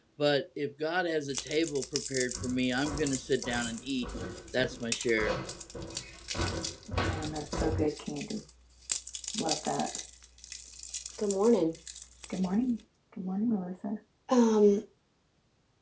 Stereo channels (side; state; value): both; identical; correlation 1.00